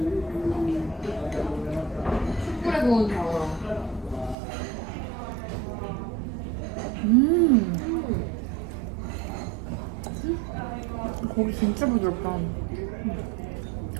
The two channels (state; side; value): drops out; left; at 4.4 s